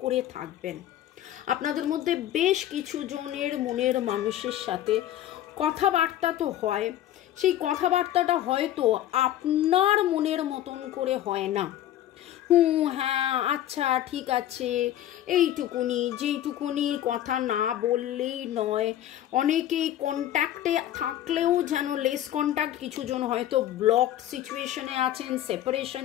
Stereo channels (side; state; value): right; quieter; 12.4 dB